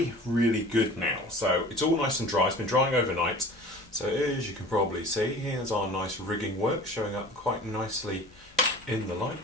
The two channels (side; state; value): both; normal; correlation 0.42